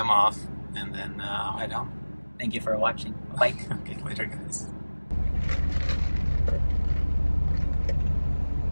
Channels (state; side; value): inverted; both; correlation -1.00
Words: off and then I'll head home. Thank you for watching. Bye. Okay, later, guys.